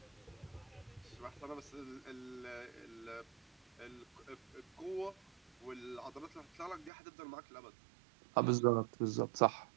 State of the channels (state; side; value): drops out; left; at 6.9 s